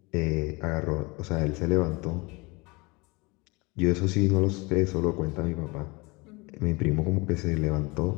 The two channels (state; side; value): quieter; right; 26.0 dB